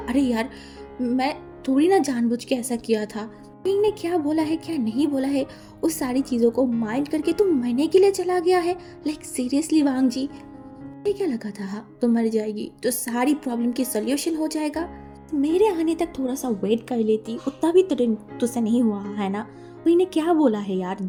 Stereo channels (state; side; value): identical; both; correlation 1.00